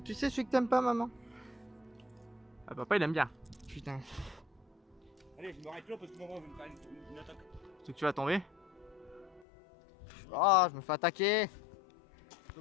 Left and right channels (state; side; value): drops out; right; at 9.5 s